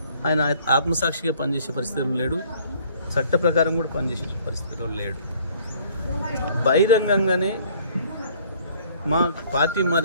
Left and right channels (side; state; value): both; inverted; correlation -0.58